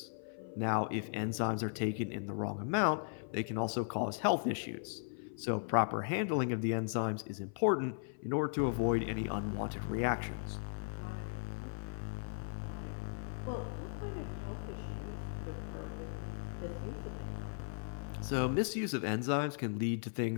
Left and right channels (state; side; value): silent; right; 53 dB below the other